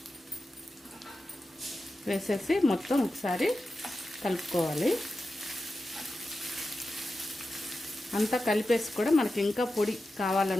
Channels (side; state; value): both; normal; correlation 0.91